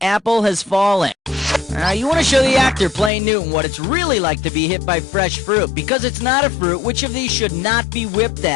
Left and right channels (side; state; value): right; drops out; at 3.1 s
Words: Has Fallen. You want to show the actor playing Newton what it's really like to be hit by fresh fruit. Because it's not a fruit, which of these should not be whipped